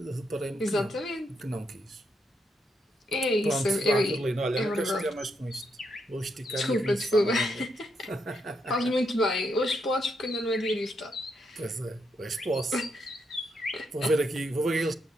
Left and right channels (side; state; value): both; normal; correlation 0.79